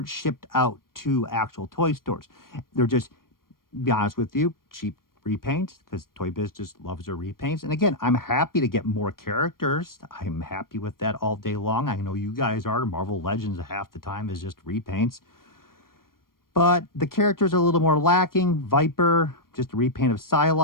shipped out to actual toy stores. They're just, to be honest with you, cheap repaints, because Toy Biz just loves their repaints. And again, I'm happy to get more characters. I'm happy with that all day long. I know you guys are. Marvel Legends half the time is just repaints. But the characters are a little more lacking. Viper, just a repaint of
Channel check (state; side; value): late; right; 0.92 ms